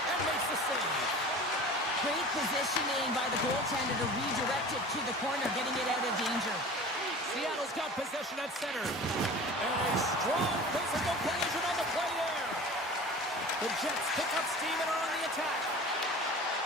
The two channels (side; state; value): both; normal; correlation 0.39